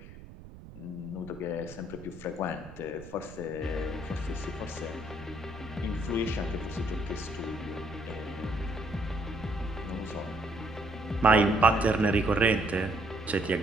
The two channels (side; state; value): right; noise; rumble, 16 dB below the sound